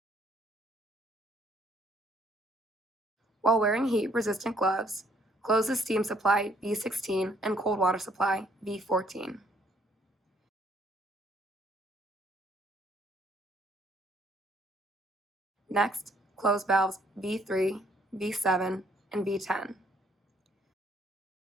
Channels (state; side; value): normal; both; correlation 0.65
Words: While wearing heat-resistant gloves, close the steam supply V16 and cold water supply V14. Next, close valves V3, V7, and V10.